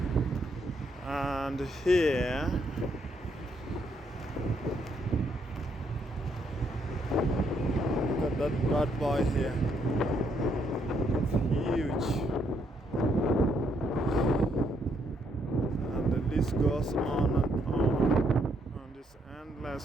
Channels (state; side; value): normal; both; correlation 0.73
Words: And here, look at that bad boy here. It's huge. And the list goes on and on. And it's